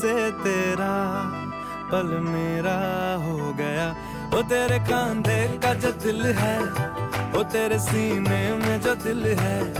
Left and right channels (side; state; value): both; identical; correlation 1.00